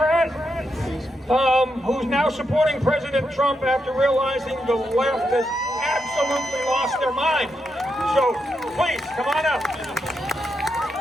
who's now supporting President Trump after realizing the left has absolutely lost their mind. So, please, come on up.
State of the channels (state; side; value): normal; both; correlation 0.83